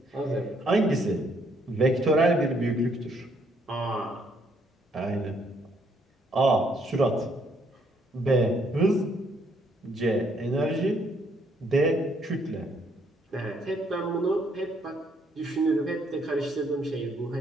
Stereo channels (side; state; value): both; normal; correlation 0.69